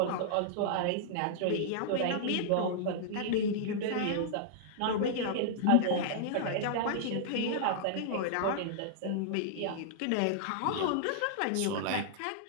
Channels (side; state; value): both; different; correlation -0.01